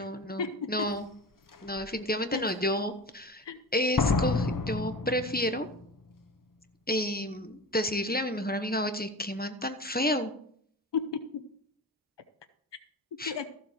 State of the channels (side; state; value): both; normal; correlation 0.30